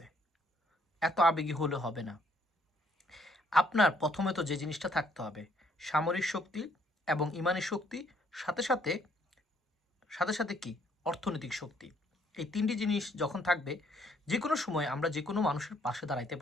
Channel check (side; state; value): both; normal; correlation 0.67